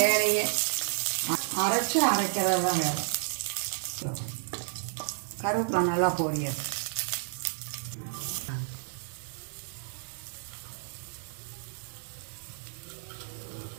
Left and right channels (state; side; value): silent; left; 57 dB below the other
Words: வேலையே. அரைக்கிறது தான் வேலை. கருவேப்பிலை நல்லா பொரியாது.